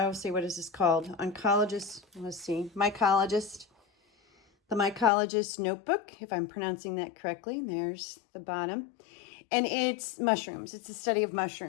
is this called? Mycologist. The Mycologist Notebook, if I'm pronouncing that correctly. There's the bottom. And it's mushrooms. It's a study of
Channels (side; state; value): right; drops out; at 5.1 s